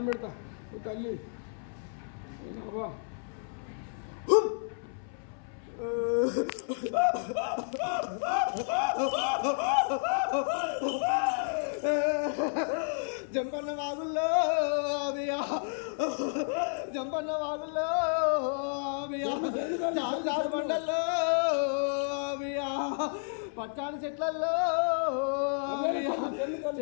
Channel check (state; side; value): silent; right; 57 dB below the other